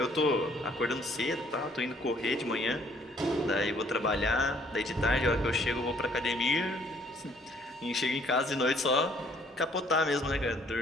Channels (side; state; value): both; normal; correlation 0.62